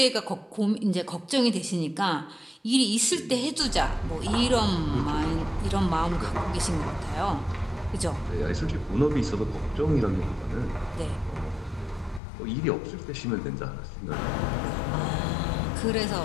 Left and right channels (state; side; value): drops out; right; at 12.2 s